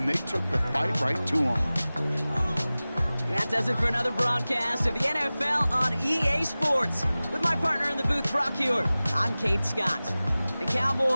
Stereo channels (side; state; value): both; inverted; correlation -0.98